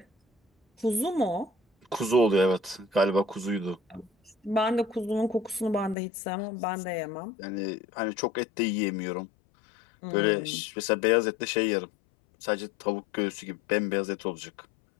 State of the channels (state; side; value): drops out; right; at 6.0 s